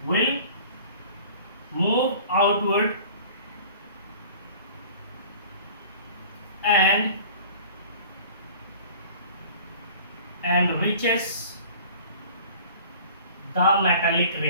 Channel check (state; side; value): inverted; both; correlation -0.46